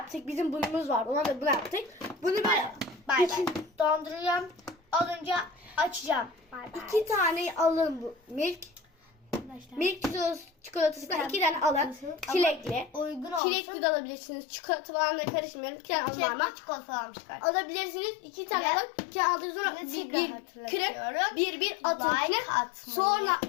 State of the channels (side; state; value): right; drops out; at 13.4 s